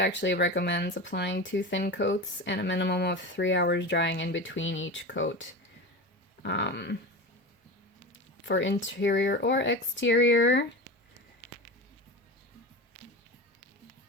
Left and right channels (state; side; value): normal; both; correlation 0.27